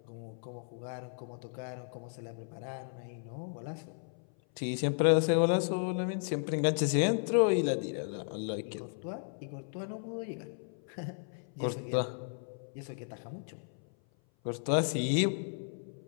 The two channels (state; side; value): silent; right; 55 dB below the other